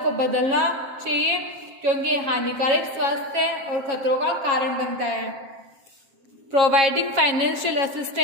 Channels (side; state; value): left; late; 7.3 ms